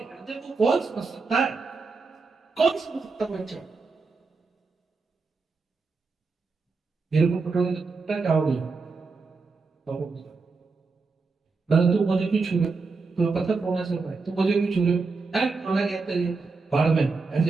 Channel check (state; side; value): quieter; left; 4.3 dB